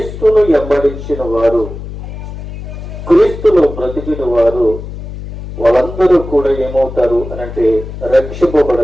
వెంబడించిన వారు, క్రీస్తులో బ్రతికిన వారు వాళ్ళందరూ కూడా ఏమవుతారు అనంటే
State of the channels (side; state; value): left; noise; hum, 10 dB below the sound